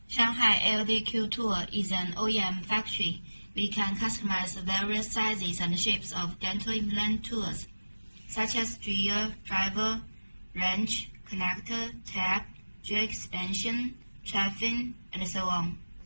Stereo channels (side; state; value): both; inverted; correlation -1.00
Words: Shanghai LDQ Tool is an OEM factory. We can customize various sizes and shapes of dental implant tools, such as drill, driver, wrench, connector, tab, drill expansion, traffic, and so on.